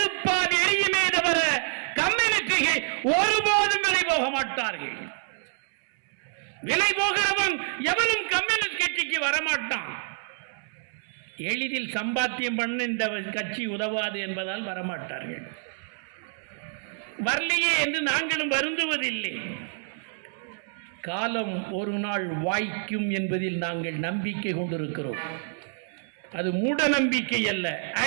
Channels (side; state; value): left; silent; 60 dB below the other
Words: எரியுமே தவிர கம்யூனிஸ்டுகள் ஒருபோதும் விலை போக மாட்டார்கள். விலை போகிறவன் எவனும் கம்யூனிஸ்ட் கட்சிக்கு வரமாட்டான். எளிதில் சம்பாத்தியம் பண்ண இந்த கட்சி உதவாது என்பதால் வரமாட்டார்கள். வரலையே என்று நாங்களும் வருந்துவதில்லை. காலம் ஒரு நாள் வாய்க்கும் என்பதில் நாங்கள் நம்பிக்கை கொண்டிருக்கிறோம். அது மூட நம்பிக்கை அல்ல,